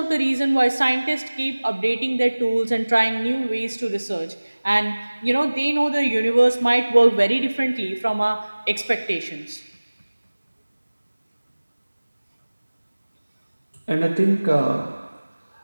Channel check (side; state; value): both; inverted; correlation -1.00